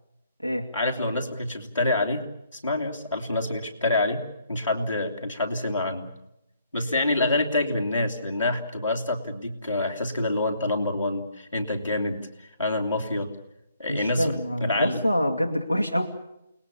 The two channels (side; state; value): both; inverted; correlation -0.69